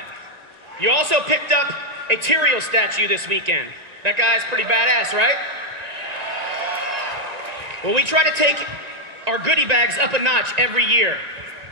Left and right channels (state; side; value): late; left; 1.9 ms